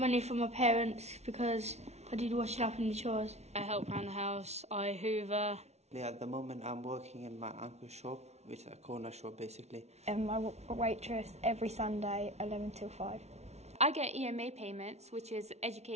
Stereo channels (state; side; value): late; left; 0.31 ms